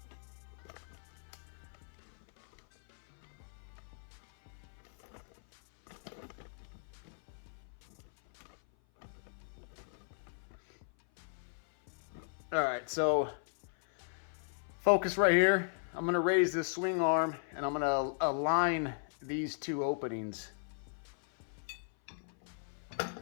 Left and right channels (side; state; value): right; silent; 53 dB below the other